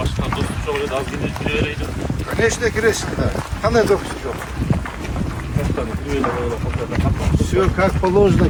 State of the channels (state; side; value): identical; both; correlation 1.00